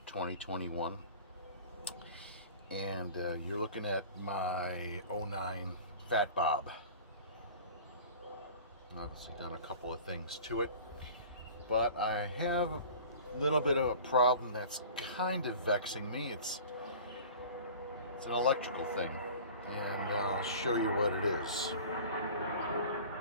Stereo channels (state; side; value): inverted; both; correlation -0.42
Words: 2021, and you're looking at my '09 Fat Bob. Obviously done a couple of things to it, but I have a little bit of a problem that's kind of vexing me. It's an electrical thing, and I'll show you what it is.